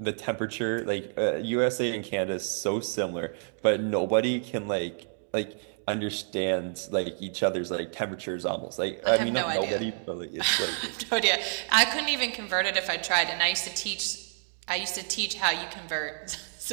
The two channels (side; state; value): left; silent; 59 dB below the other